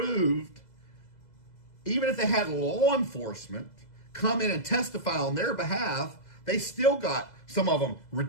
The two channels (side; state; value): right; late; 2.0 ms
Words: had law enforcement come in and testify on their behalf, they still got, some of them,